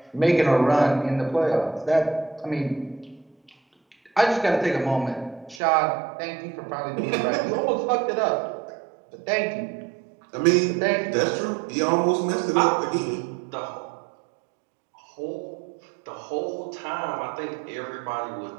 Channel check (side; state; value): left; drops out; at 5.6 s